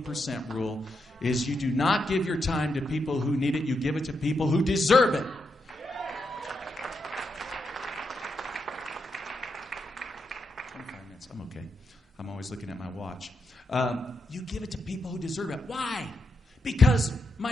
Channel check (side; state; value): both; normal; correlation 0.83